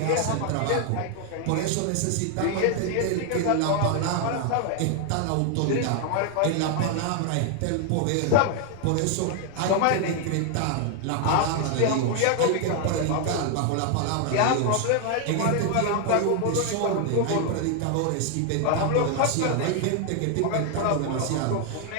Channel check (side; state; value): both; different; correlation 0.00